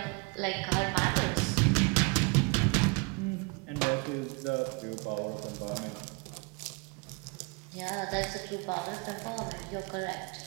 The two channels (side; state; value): left; quieter; 30.4 dB